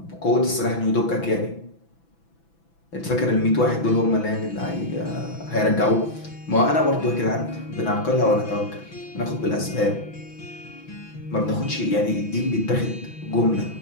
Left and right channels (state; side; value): late; right; 6.0 ms